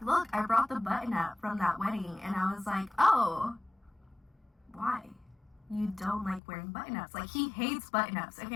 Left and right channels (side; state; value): right; drops out; at 6.4 s